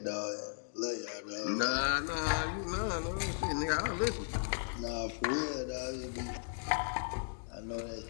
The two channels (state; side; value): silent; right; digital silence